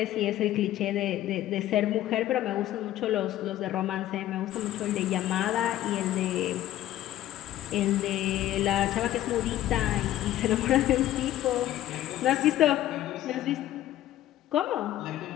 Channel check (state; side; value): quieter; right; 13.5 dB